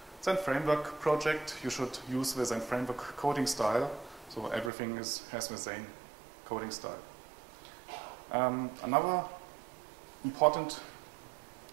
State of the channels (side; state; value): left; drops out; at 4.7 s